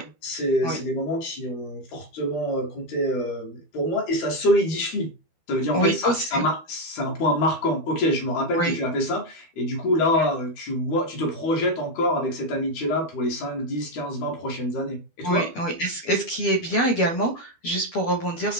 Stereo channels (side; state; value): right; late; 12 ms